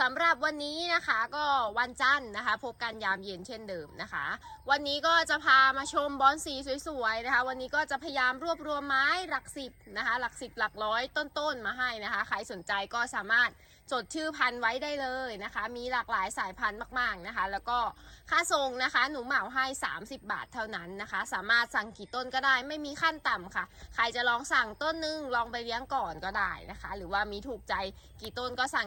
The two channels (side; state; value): both; identical; correlation 1.00